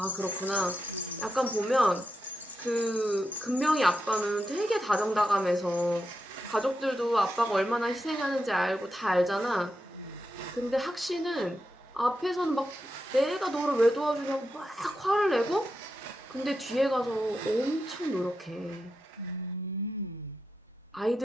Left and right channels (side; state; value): both; normal; correlation 0.87